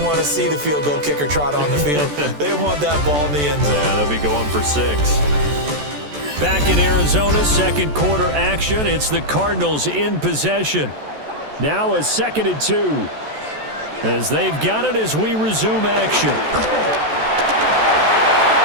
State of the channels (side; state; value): left; late; 14 ms